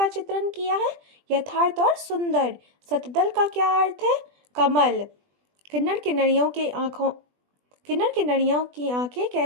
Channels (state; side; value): late; left; 20 ms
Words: चित्रण किया है? यथार्थ और सुंदर। सतदल का क्या अर्थ है? कमल। किन्नर किन्नरियों की आंखें